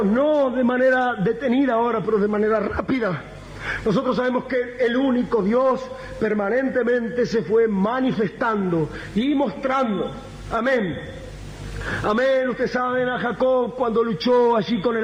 no de manera detenida ahora, pero de manera rápida. Nosotros sabemos que el único Dios permanentemente se fue manifestando y mostrando. Amén. Amén, ustedes saben a Jacob cuando luchó allí con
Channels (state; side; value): identical; both; correlation 1.00